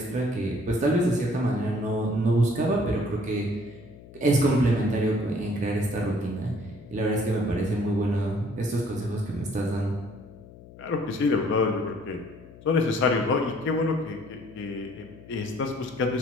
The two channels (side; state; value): left; noise; hum, 19 dB below the sound